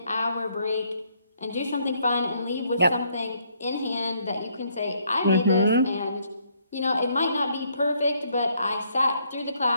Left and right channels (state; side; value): inverted; both; correlation -0.70